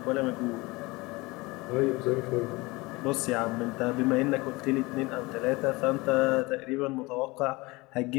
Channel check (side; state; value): right; quieter; 23.1 dB